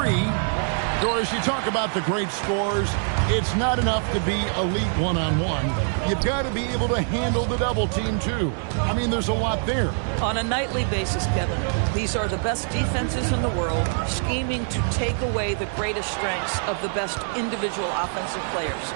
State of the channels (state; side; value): silent; left; 62 dB below the other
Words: Doris, you talk about the great scores. It's not enough to be elite one-on-one. You've got to be able to handle the double team, too. I mean, there's a lot there. On a nightly basis, Kevin, these are the best defenses in the world, scheming to take away the greatest strengths of the best individual offensive players.